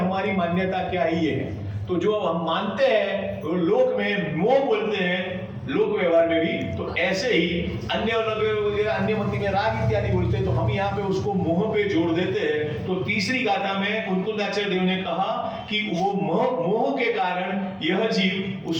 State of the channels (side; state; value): both; identical; correlation 1.00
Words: मान्यता क्या ही है। तो जो हम मानते हैं तो लोक में मोह बोलते हैं, लोक व्यवहार में भी, तो ऐसे ही अन्य अन्य मति में राग इत्यादि बोलते हैं, तो हम यहाँ पे उसको मोह पे जोड़ देते हैं। तो तीसरी गाथा में कुंतलाचार्य देव ने कहा कि वो मोह के कारण यह जीव